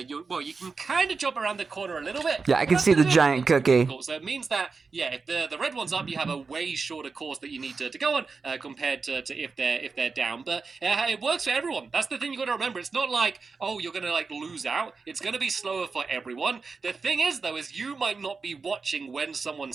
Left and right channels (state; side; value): quieter; left; 4.6 dB